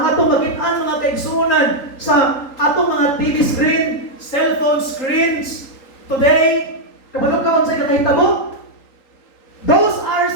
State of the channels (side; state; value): right; late; 3.8 ms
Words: atong makitaan mga kaigsunan sa atong mga TV screen, cellphone screens, today, kabalo ka sa kakahitabo? Those are